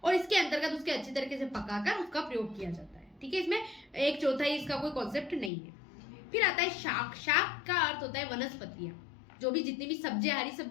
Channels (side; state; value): right; drops out; at 5.5 s